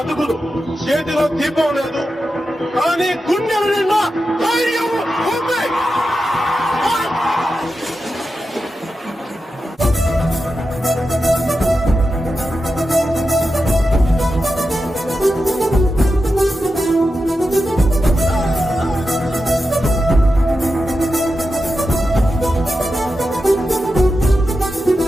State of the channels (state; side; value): normal; both; correlation 0.90